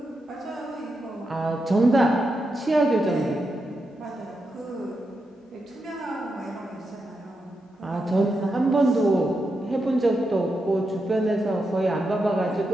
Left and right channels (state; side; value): normal; both; correlation 0.86